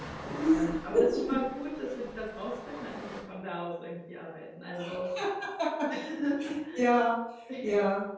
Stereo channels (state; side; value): identical; both; correlation 1.00